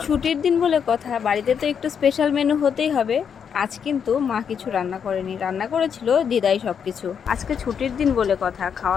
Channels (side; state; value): right; quieter; 7.3 dB